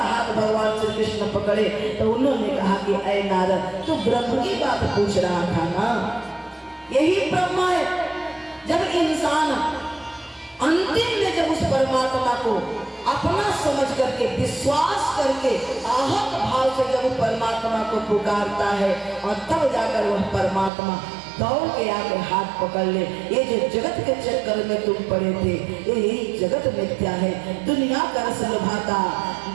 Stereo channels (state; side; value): drops out; left; at 20.7 s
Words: हाथ भगवान श्री कृष्ण पकड़े तो उन्होंने कहा कि ऐ नारद, तू ब्रह्म की बात पूछ रहा था ना, यही ब्रह्म है। जब इंसान अंतिम में जब उस परमात्मा को अपना समझ करके, विश्वास करके, आहत भाव से जब परमात्मा को पुकारता है और तब जाकर वह परमात्मा दौड़ के आके हाथ पकड़ ले। ये जो जगत के चक्कर में तुम पड़े थे, यही जगत मिथ्या है। दुनिया का रस लुभाता,